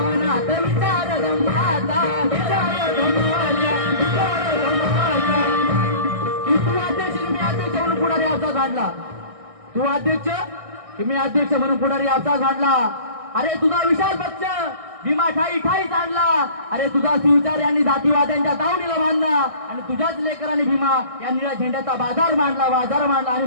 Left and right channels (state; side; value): late; left; 1.6 ms